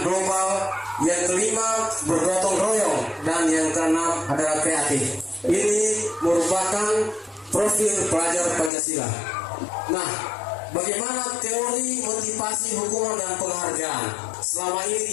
global. Yang kelima, bergotong royong. Dan yang keenam adalah kreatif. Ini merupakan profil pelajar Pancasila. Nah, bagaimana teori motivasi hukuman dan penghargaan? Selama ini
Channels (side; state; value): right; drops out; at 8.7 s